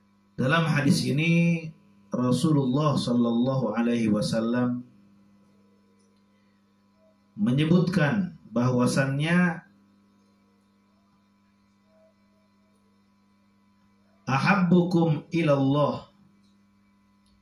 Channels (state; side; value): identical; both; correlation 1.00